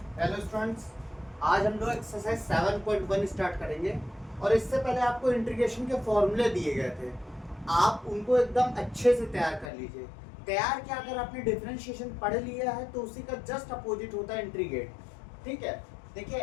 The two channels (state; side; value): drops out; right; at 9.7 s